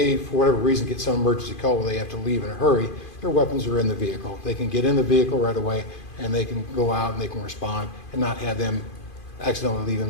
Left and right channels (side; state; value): right; late; 2.5 ms